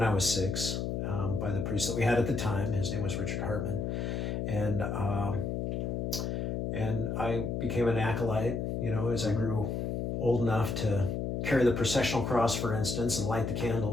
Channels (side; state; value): left; noise; hum, 1 dB below the sound